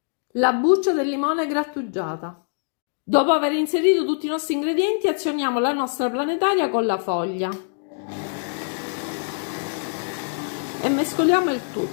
la buccia del limone grattugiata. Dopo aver inserito tutti i nostri ingredienti, azioniamo la nostra planetaria con la foglia e mescoliamo il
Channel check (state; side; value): silent; right; digital silence